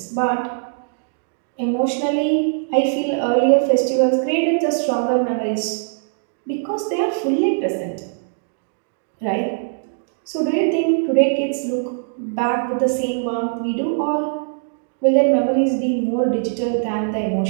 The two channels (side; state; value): left; silent; digital silence